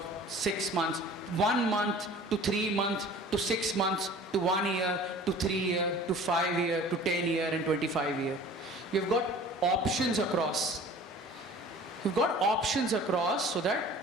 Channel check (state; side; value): normal; both; correlation 0.45